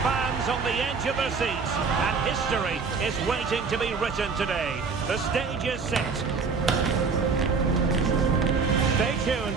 fans on the edge of their seats, and history is waiting to be written today. The stage is set. Stay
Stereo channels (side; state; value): left; quieter; 5.0 dB